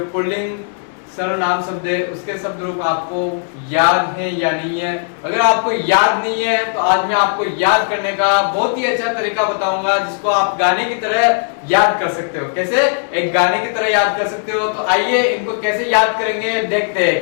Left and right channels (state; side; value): silent; right; digital silence